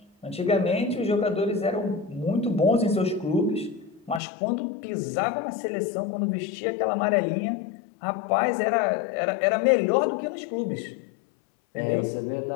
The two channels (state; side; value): drops out; right; at 4.2 s